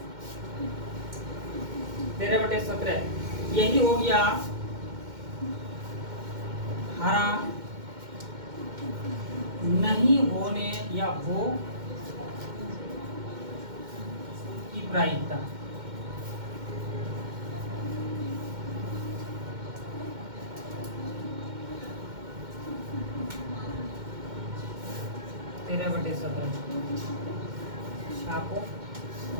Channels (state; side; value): late; left; 2.1 ms